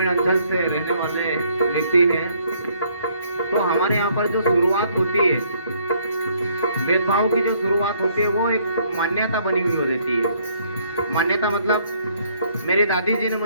अंचल से रहने वाले व्यक्ति हैं, तो हमारे यहाँ पर जो शुरुआत होती है, भेदभाव की जो शुरुआत होती है, वो एक मान्यता बनी हुई रहती है। मान्यता मतलब मेरी दादी जी ने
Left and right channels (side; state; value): both; inverted; correlation -0.66